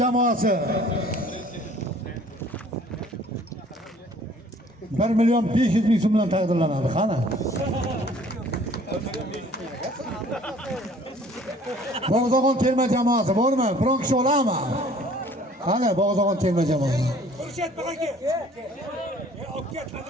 jamoasi. 1.500.000 so'm bilan taqdirlanadi. Qani? Bog'zog'on terma jamoasi bormi? Biron kishi oladimi? Qani Bog'zog'on terma jamoasi?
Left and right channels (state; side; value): normal; both; correlation 0.54